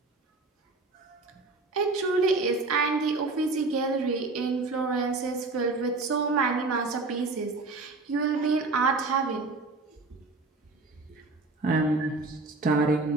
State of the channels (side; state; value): left; quieter; 3.5 dB